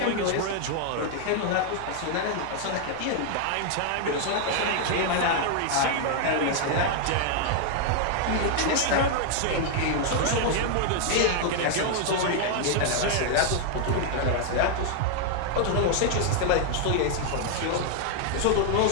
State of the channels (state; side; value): different; both; correlation 0.00